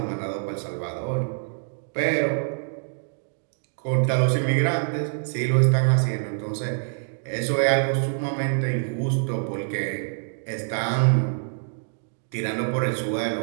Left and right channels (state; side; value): silent; left; 61 dB below the other